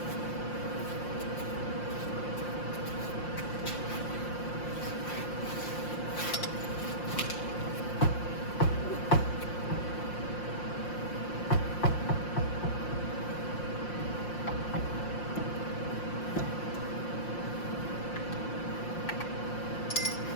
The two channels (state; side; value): late; right; 5.7 ms